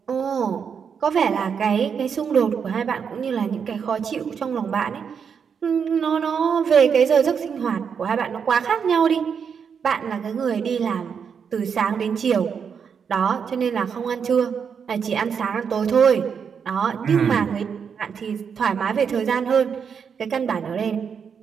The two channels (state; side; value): quieter; left; 6.8 dB